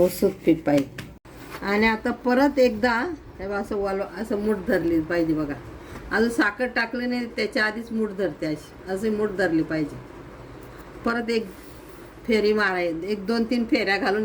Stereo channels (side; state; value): both; identical; correlation 1.00